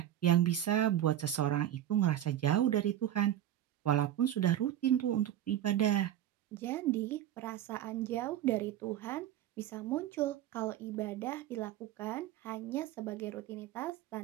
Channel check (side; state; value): left; quieter; 11.7 dB